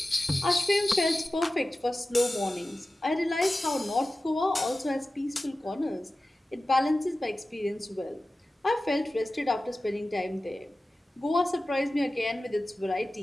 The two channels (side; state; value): both; normal; correlation 0.95